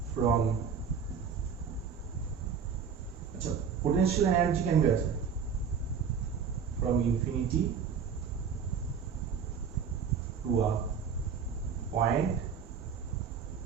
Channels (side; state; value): left; quieter; 6.7 dB